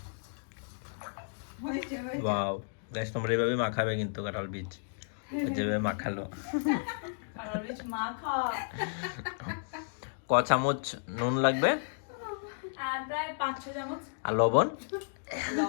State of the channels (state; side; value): silent; right; digital silence